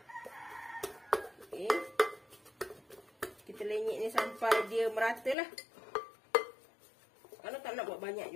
Okey. Kita lenyek ni sampai dia merata lah. Kalau tak nak buat banyak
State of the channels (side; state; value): right; drops out; at 5.4 s